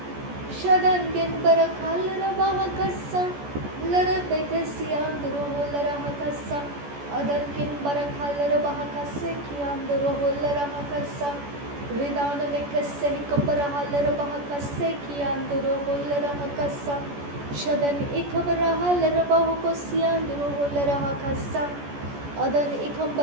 शदंगिन बरखलर बहकसा लरबेक सियांदुरो होलरा हकसा अदंगिन बरखलर बहकसे कियांदुरो होलरा हकसा रिदान में कसे कबरहलर बहकसे कियांदुरो होलरा हकसा शदन इखबरहलर बहुको सियांदुरो होलरा हकसा अदन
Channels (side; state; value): left; late; 14 ms